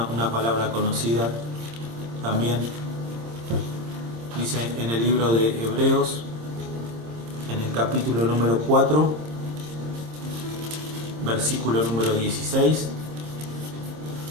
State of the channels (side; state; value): left; late; 26 ms